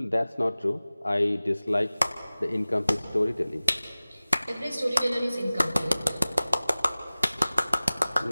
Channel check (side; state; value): both; inverted; correlation -0.99